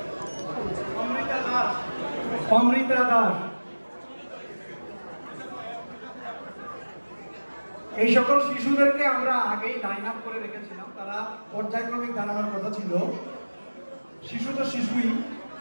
অমৃতা দাস। এই সকল শিশুদেরকে আমরা আগেই লাইন আপ করে রেখেছিলাম, তারা পর্যায়ক্রমিক দাঁড়ানোর কথা ছিল। শিশু তো শিশুই,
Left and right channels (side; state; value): both; inverted; correlation -1.00